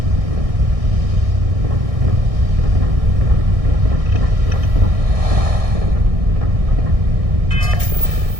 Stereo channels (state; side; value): late; left; 1.6 ms